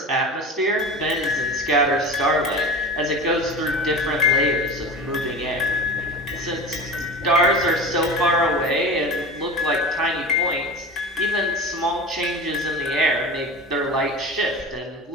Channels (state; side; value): normal; both; correlation 0.32